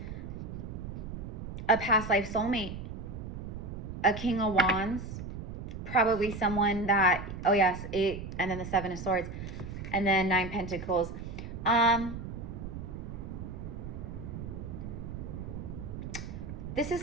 a past life soulmate, a King of Wands, probably someone that, oh yes, 8, and then the 7 of Swords, and then 9 Pentacles. This is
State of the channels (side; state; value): right; noise; rumble, 8 dB below the sound